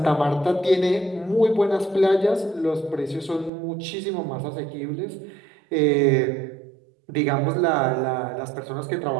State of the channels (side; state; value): left; drops out; at 3.5 s